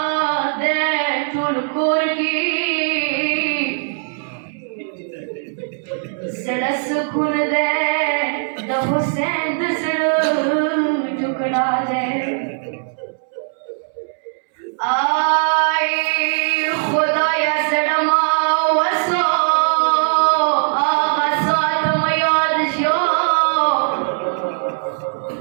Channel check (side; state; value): left; silent; 66 dB below the other